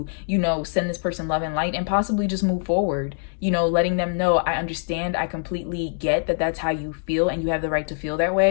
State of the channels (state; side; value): silent; right; digital silence